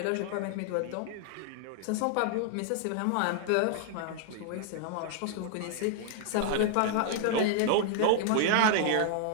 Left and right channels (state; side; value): different; both; correlation -0.01